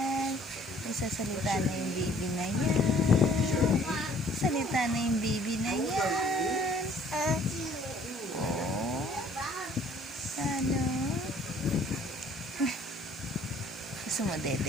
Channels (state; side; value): normal; both; correlation 0.57